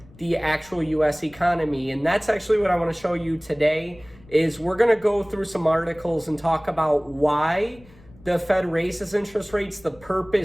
the actual US economy. And that's actually what I want to show you today is we're going to go through some articles and talk about why the Fed raises interest rates, the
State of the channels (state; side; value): noise; left; rumble, 25 dB below the sound